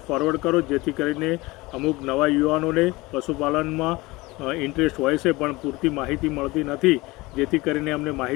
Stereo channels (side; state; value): right; quieter; 21.8 dB